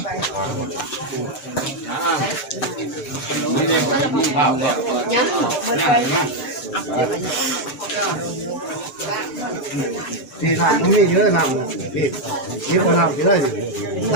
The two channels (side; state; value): right; late; 6.7 ms